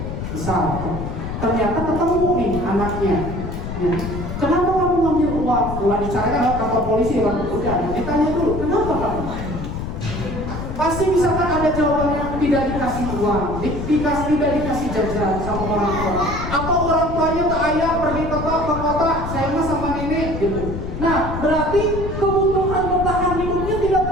Misal ternyata ketemu nih anaknya. Ya. Kenapa kamu ngambil uang? Ulah dicarikan ke kantor polisi kan? Udah, ditanya dulu, kenapa kamu? Pasti misalkan ada jawabannya tidak dikasih uang, tidak dikasih jajan sama orang tua, atau orang tuanya ke ayah pergi ke kota, saya mah sama nenek gitu. Nah, berarti kebutuhan bertahan hidupnya tidak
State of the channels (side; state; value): left; noise; rumble, 6 dB below the sound